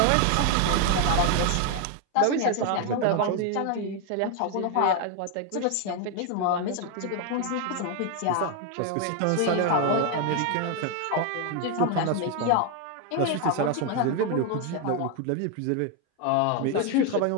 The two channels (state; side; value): different; both; correlation 0.01